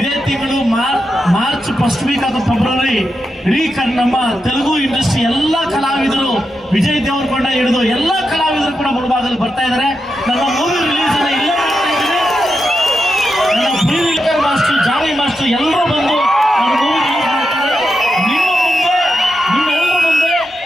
ತಿಂಗಳು ಮಾರ್ಚ್ ಫಸ್ಟ್ ವೀಕ್ ಅಥವಾ ಫೆಬ್ರವರಿ. ಇಡೀ ನಮ್ಮ ತೆಲುಗು ಇಂಡಸ್ಟ್ರಿ ಎಲ್ಲ ಕಲಾವಿದರು, ವಿಜಯ್ ದೇವರಕೊಂಡ ಹಿಡಿದು ಎಲ್ಲ ಕಲಾವಿದರು ಕೂಡ ಮುಳಬಾಗಿಲು ಬರ್ತಾ ಇದ್ದಾರೆ. ನನ್ನ ಮೂವಿ ರಿಲೀಸ್ ಅನ್ನ ಇಲ್ಲೇ ಮಾಡ್ತಾ ಇದ್ದೀನಿ. ನನ್ನ ಪ್ರೀವಿಲ್ಕರ್ ಮಾಸ್ಟರ್, ಜಾನಿ ಮಾಸ್ಟರ್ ಎಲ್ಲರೂ ಬಂದು ನನ್ನ ಮೂವಿ ರಿಲೀಸ್ ಮಾಡ್ತಾರೆ. ನಿಮ್ಮೆಲ್ಲರ ಮುಂದೆ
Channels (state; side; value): normal; both; correlation 0.87